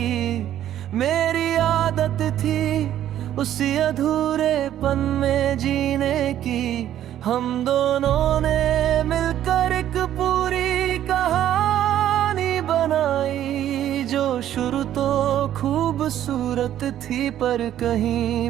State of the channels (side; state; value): left; quieter; 11.6 dB